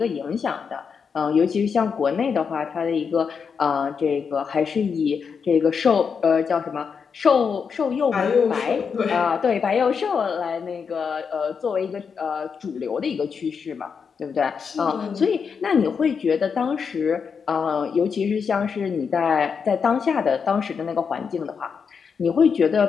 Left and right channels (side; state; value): right; quieter; 6.1 dB